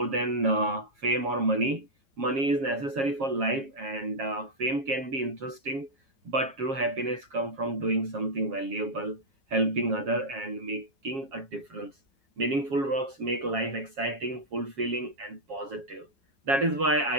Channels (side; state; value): left; late; 7.3 ms